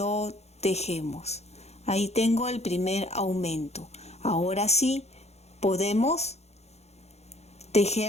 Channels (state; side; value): late; right; 0.31 ms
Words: tejemos. Ahí tengo el primer aumento. Ahora sí podemos